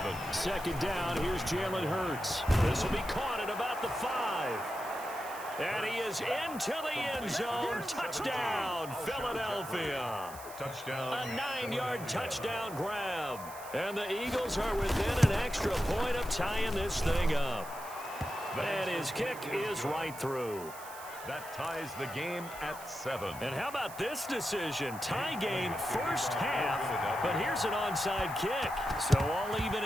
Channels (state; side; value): noise; right; hiss, 15 dB below the sound